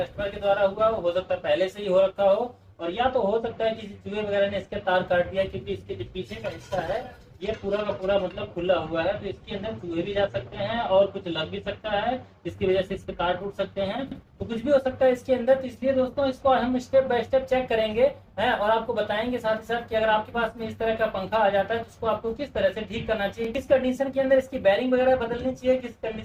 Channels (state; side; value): identical; both; correlation 1.00